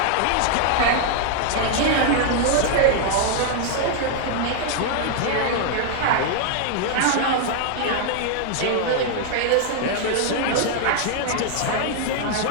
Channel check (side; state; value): both; different; correlation 0.00